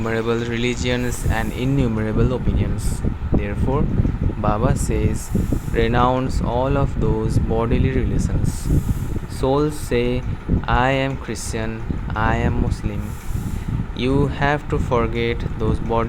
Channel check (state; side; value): identical; both; correlation 1.00